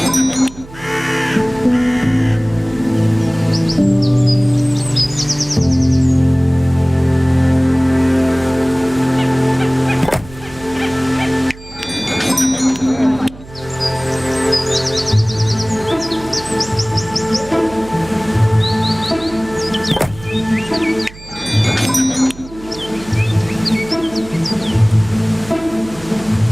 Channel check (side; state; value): right; noise; hum, 18 dB below the sound